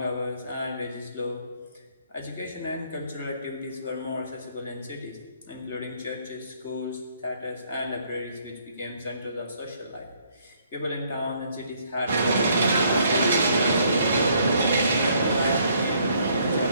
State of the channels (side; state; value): both; inverted; correlation -0.67